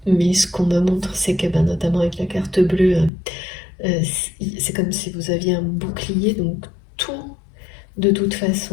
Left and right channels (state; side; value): drops out; right; at 3.1 s